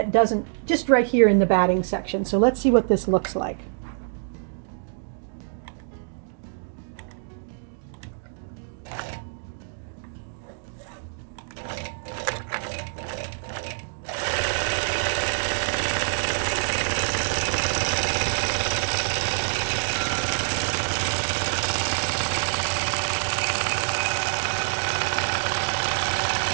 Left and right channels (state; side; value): silent; left; digital silence